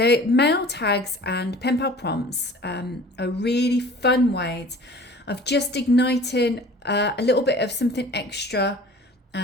mail tags and pen pal prompts are really fun ways of just igniting a little bit of something extra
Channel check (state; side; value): normal; both; correlation 0.45